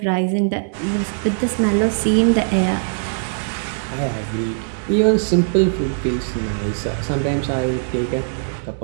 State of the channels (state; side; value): silent; left; digital silence